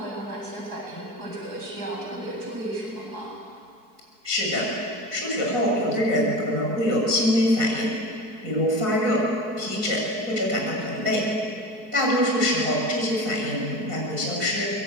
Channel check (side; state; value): left; late; 4.6 ms